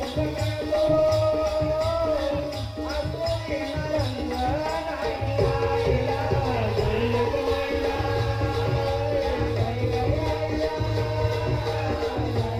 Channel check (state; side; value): identical; both; correlation 1.00